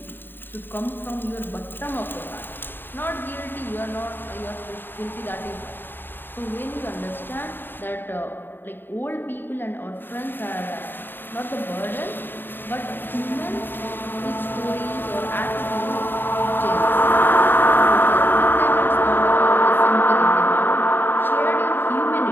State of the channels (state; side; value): late; right; 0.095 ms